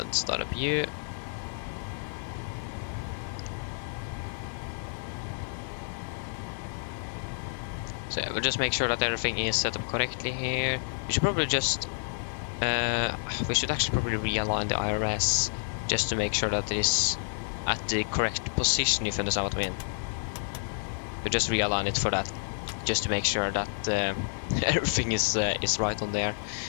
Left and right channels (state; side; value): silent; right; digital silence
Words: start up you. So yeah, we'll just make sure that everything is set up correctly here. We should probably just we should actually probably realign the IRS just to make sure that it is at the correct position, if you understand what I mean. We'll just realign it for that, just to make sure that everything is right on there.